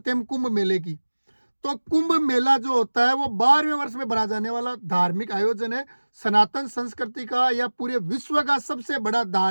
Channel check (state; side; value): inverted; both; correlation -1.00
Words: हैं हम कुंभ मेले की। तो कुंभ मेला जो होता है वो 12वें वर्ष में भरा जाने वाला धार्मिक आयोजन है। सनातन संस्कृति का या पूरे विश्व का सबसे बड़ा